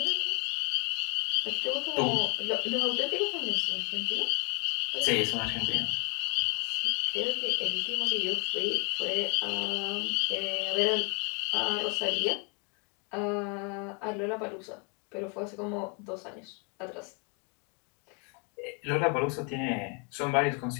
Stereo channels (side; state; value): right; quieter; 35.6 dB